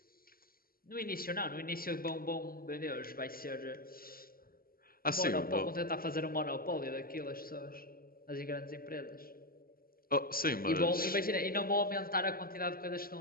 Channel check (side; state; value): right; late; 0.43 ms